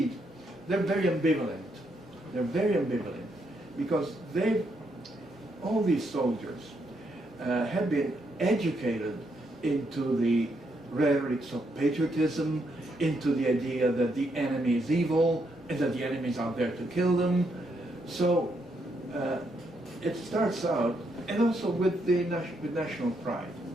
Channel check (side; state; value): both; normal; correlation 0.77